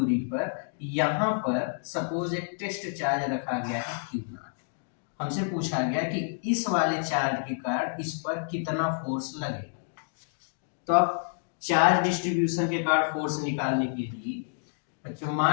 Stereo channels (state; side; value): silent; right; digital silence